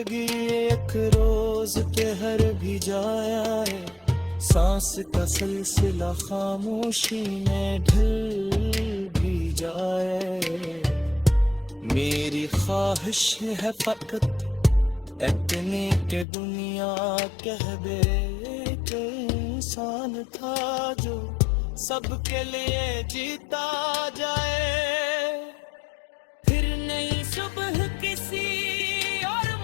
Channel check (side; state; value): right; drops out; at 16.2 s